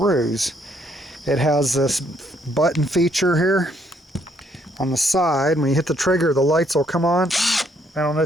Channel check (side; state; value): both; normal; correlation 0.70